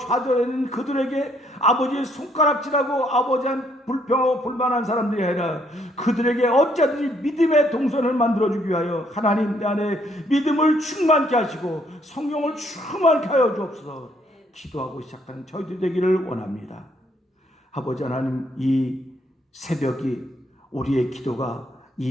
그들에게 아버지의 손가락질하고 아버지한 불평하고 불만한 사람들이 아니라 그들에게 어찌하든지 믿음의 동선을 만들어주기 위하여 하나님 내 안에 믿음을 충만케 하시고 성령을 충만케 하여 주옵소서. 기도하고 시작하는 저희들 되기를 원합니다. 아버지 하나님, 이 새벽이 우리의 기도가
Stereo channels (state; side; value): normal; both; correlation 0.69